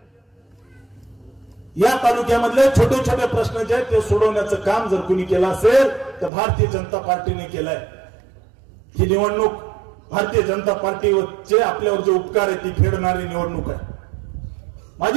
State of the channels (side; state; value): left; drops out; at 6.3 s